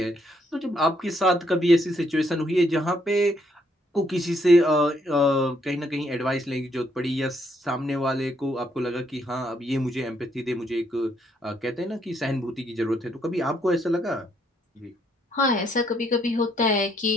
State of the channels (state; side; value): normal; both; correlation 0.72